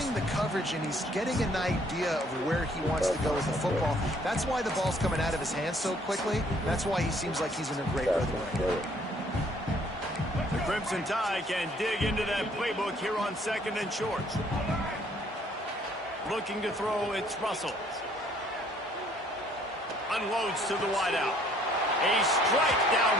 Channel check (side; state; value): both; normal; correlation 0.62